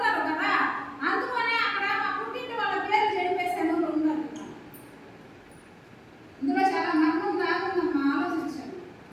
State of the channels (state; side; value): identical; both; correlation 1.00